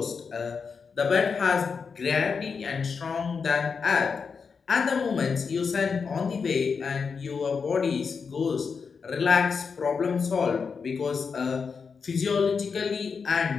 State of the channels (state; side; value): quieter; right; 5.5 dB